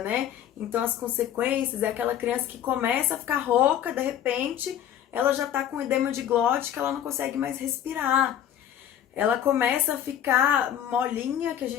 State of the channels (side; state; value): right; quieter; 10.5 dB